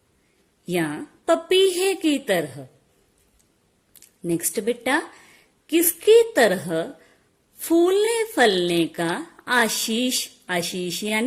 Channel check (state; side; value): identical; both; correlation 1.00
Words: या पपीहे की तरह। नेक्स्ट बेटा, किसकी तरह फूलने फलने का आशीष, आशीष